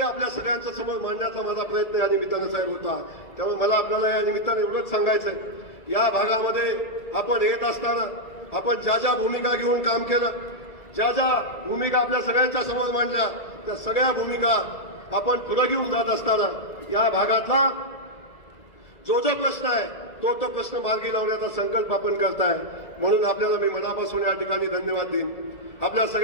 आपल्या सगळ्यांच्या समोर मांडण्याचा माझा प्रयत्न या निमित्तानं साहेब होता. त्यामुळे मला आपल्याला या निमित्ताने एवढंच सांगायचंय, या भागामध्ये आपण येत असताना आपण ज्या ज्या भूमिका घेऊन काम केलं, ज्या ज्या भूमिका आपल्या सगळ्यांच्या समोर मांडल्या, त्या सगळ्या भूमिका आपण पुढे घेऊन जात असताना या भागातला जो प्रश्न आहे तो प्रश्न मार्गी लावण्याचा संकल्प आपण करताय. म्हणून आपल्याला मी मनापासून या ठिकाणी धन्यवाद देईन. आपल्या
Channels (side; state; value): right; late; 1.7 ms